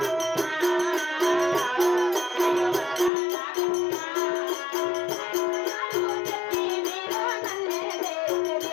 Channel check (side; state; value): right; drops out; at 3.1 s